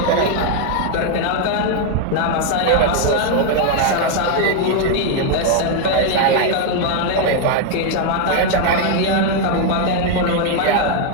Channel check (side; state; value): both; different; correlation 0.00